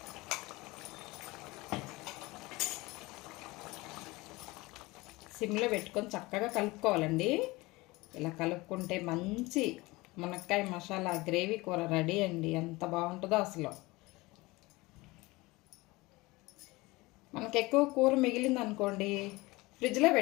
సిమ్లో పెట్టుకొని చక్కగా కలుపుకోవాలండి. ఇలా కలుపుకుంటే మంచి మునక్కాయ మసాలా గ్రేవీ కూర రెడీ అండి. ఎంత బాగుంటుందో అసలు. మనకు ఎక్కువ కూర మిగిలింది అనుకోండి, ఫ్రిడ్జ్లో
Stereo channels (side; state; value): right; quieter; 22.0 dB